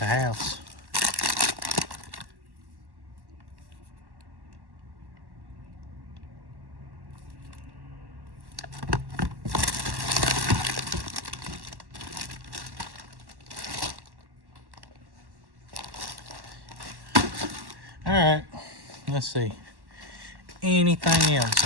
house. All right, let's see. Anything else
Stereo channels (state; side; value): late; left; 1.1 ms